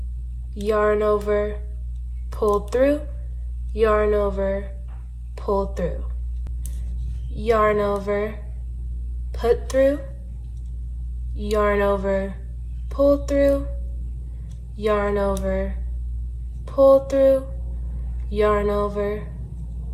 yarn over, pull through, yarn over, pull through, yarn over, put through, yarn over, pull through, yarn over, pull through, yarn over,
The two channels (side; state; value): both; identical; correlation 1.00